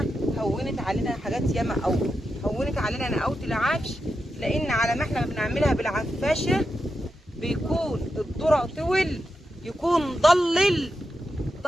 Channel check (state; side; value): normal; both; correlation 0.87